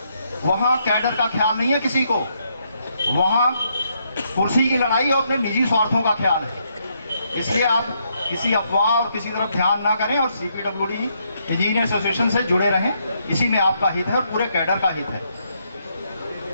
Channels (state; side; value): inverted; both; correlation -0.75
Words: वहां कैडर का ख्याल नहीं है किसी को, वहां कुर्सी की लड़ाई और अपने निजी स्वार्थों का ख्याल है। इसलिए आप किसी अफवाह और किसी तरफ ध्यान ना करें और CPWD इंजीनियर एसोसिएशन से जुड़े रहें। इसी में आपका हित है और पूरे कैडर का हित है।